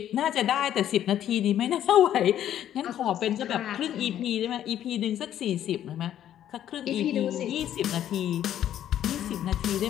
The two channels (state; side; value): quieter; right; 11.1 dB